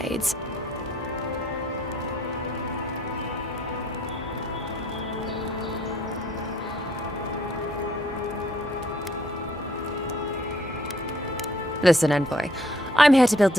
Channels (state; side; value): normal; both; correlation 0.64